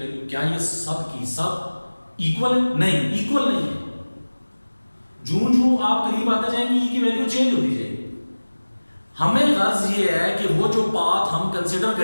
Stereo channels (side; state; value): both; inverted; correlation -1.00